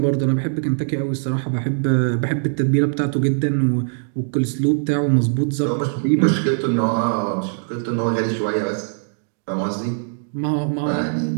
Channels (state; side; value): silent; left; digital silence